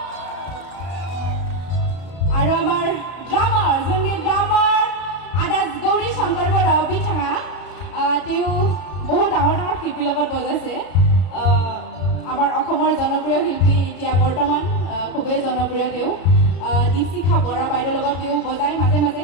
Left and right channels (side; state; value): right; late; 33 ms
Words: আৰু আমাৰ ড্ৰামাৰ যোননি ড্ৰামাৰ আদা গৌৰী শংকৰ বৰা বিঠাঙা তেওঁ বহুত ডাঙৰ ডাঙৰ শিল্পীৰ লগত বজাইছে আমাৰ অসমৰ জনপ্ৰিয় শিল্পী এতিয়া বৰ্তমান খুবেই জনপ্ৰিয় তেওঁ দীপশিখা বৰা বাইদেউৰ লগত তেওঁ বজাই মাজে মাজে